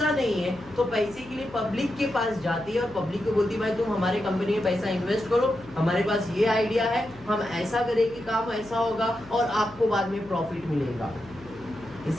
नहीं है तो पैसे के लिए पब्लिक के पास जाती है और पब्लिक को बोलती है भाई तुम हमारे कंपनी में पैसा इन्वेस्ट करो, हमारे पास ये आइडिया है, हम ऐसा करेंगे, काम ऐसा होगा और आपको बाद में प्रॉफिट मिलेगा।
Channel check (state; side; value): noise; left; hum, 22 dB below the sound